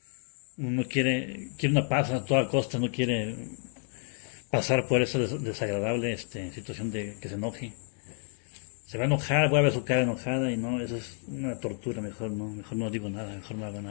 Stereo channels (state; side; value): silent; right; 55 dB below the other